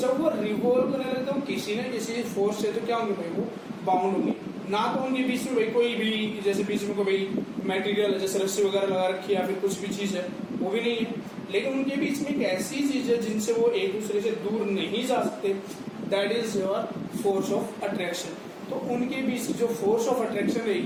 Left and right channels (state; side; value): identical; both; correlation 1.00